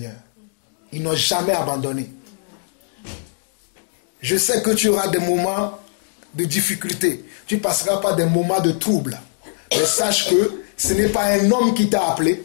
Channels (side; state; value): right; silent; digital silence